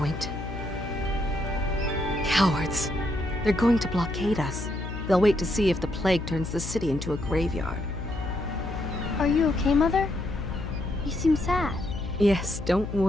Cowards. They're going to blockade us. They'll wait to see if the plague turns the city into a graveyard. Are you okay, Mother? You seem sad. Yes, don't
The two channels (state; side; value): noise; left; hum, 7 dB below the sound